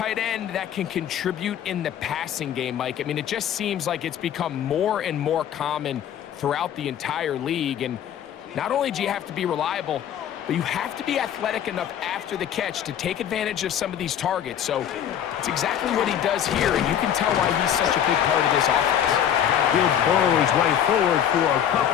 end that can contribute in the passing game, Mike, I mean, it just seems like it's become more and more common throughout the entire league. And not only do you have to be reliable, but you have to be athletic enough after the catch to take advantage of some of these targets. So it's exactly what he does here, and you can tell why he's such a big part of this offense. He'll burrow his way forward for a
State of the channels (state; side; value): quieter; right; 9.7 dB